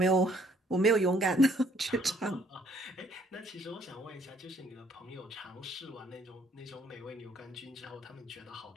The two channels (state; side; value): normal; both; correlation 0.64